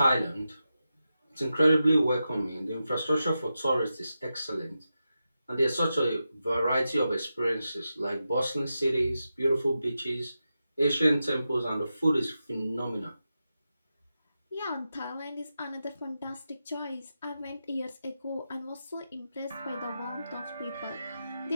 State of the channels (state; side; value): inverted; both; correlation -0.90